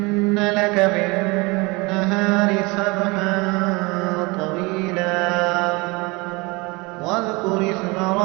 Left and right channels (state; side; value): quieter; left; 25.8 dB